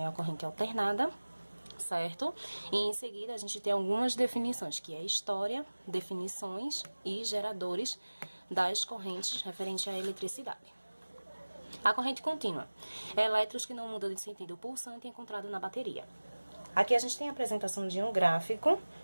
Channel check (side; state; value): both; inverted; correlation -1.00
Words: e a corrente alternada, certo? E em seguida a gente tem algumas definições, que é história, definições e geradores das correntes referentes à eletricidade. A corrente contínua é elétrons que não mudam de sentido pulsante encontrado na bateria. Aqui a gente tem a apresentação de um gráfico,